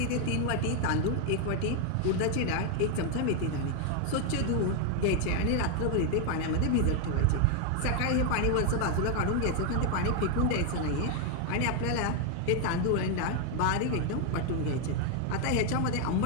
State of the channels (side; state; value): both; different; correlation 0.01